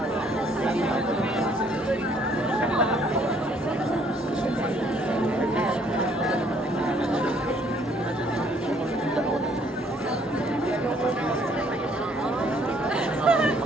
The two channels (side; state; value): both; normal; correlation 0.64